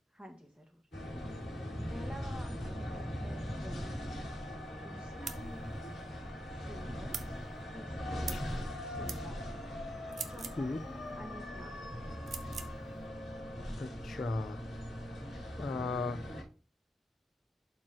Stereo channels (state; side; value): normal; both; correlation 0.84